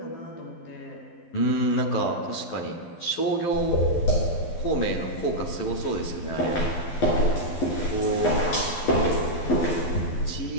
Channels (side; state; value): right; late; 12 ms